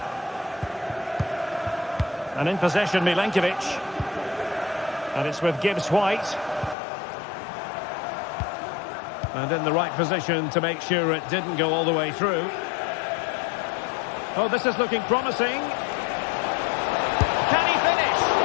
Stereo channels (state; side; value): drops out; right; at 6.8 s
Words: And in possession, Milenkovic. And it's with Gibbs White. And in the right position to make sure it didn't go all the way through. Oh, this is looking promising. Can he finish?